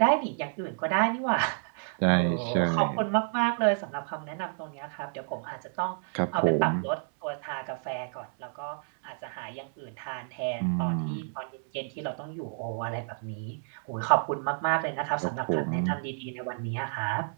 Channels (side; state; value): left; silent; digital silence